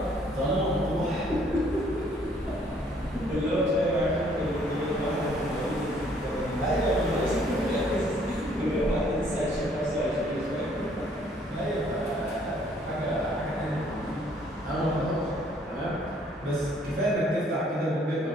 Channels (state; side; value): normal; both; correlation 0.63